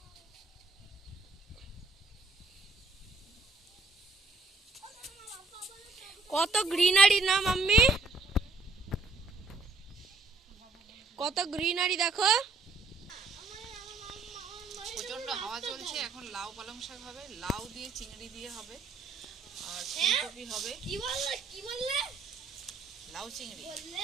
কত গ্রিনারি না মাম্মি, কত গ্রিনারি দেখো। প্রচন্ড হাওয়া চলছে। এখন লাউ পালং শাক হবে, লাউ দিয়ে চিংড়ি দিয়ে হবে, আর ফুলকপি হবে। কি বললে? লাউ চিংড়ি।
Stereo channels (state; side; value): quieter; left; 3.7 dB